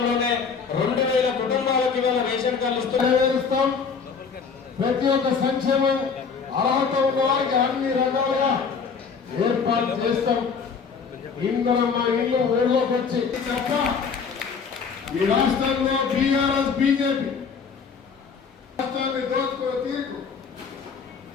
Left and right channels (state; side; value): quieter; right; 5.8 dB